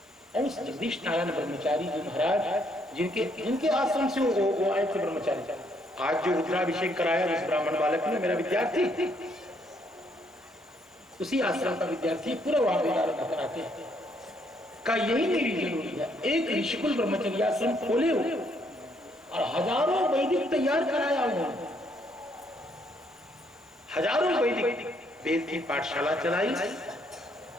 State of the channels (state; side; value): normal; both; correlation 0.70